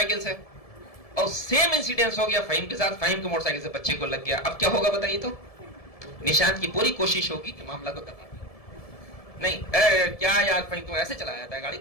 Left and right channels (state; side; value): late; right; 1.7 ms